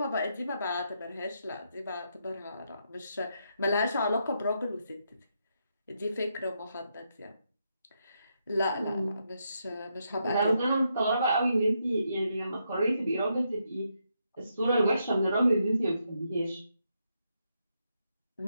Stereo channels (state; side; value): inverted; both; correlation -0.80